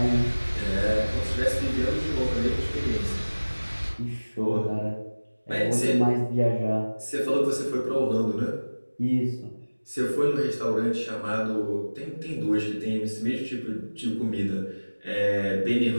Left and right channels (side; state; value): both; inverted; correlation -1.00